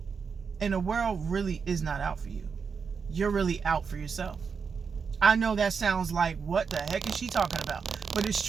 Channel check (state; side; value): quieter; left; 5.7 dB